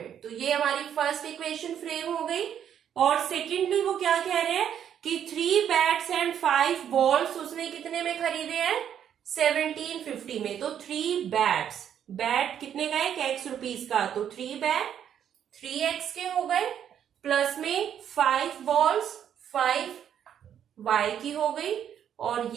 तो ये हमारी फर्स्ट इक्वेशन फ्रेम हो गई। और सेकेंडली वो क्या कह रहे हैं कि 3 बैट्स एंड 5 बॉल्स उसने कितने में खरीदे हैं, 1750 में। तो 3 बैट्स, बैट कितने का है, X रुपीस का, तो 3 बैट 3X के हो गए। प्लस में 5 बॉल्स 5y की हो गई, और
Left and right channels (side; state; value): left; quieter; 9.3 dB